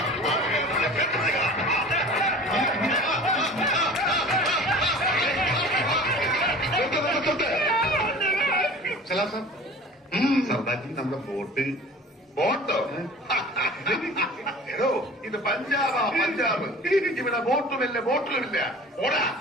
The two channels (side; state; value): both; normal; correlation 0.42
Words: സർദാർജി, നമ്മുടെ ബോട്ടോ എടോ, ഇത് പഞ്ചാബാ, പഞ്ചാബ്. ഇവിടെ ബോട്ടുമില്ല, ബോട്ടിലുമില്ല. ഓടാ.